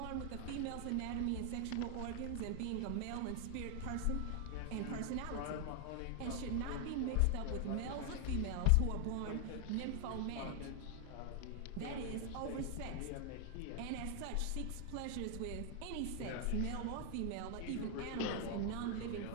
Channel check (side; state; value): both; different; correlation 0.00